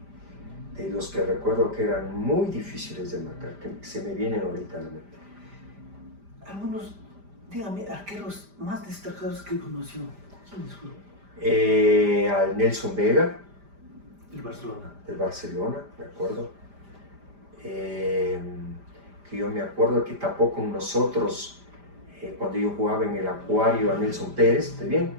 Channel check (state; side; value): late; left; 5.0 ms